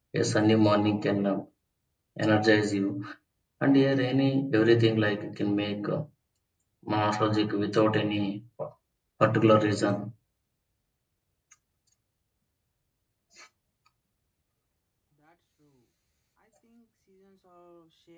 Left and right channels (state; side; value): identical; both; correlation 1.00